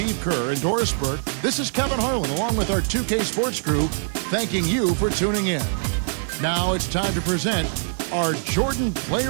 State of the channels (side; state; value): left; silent; digital silence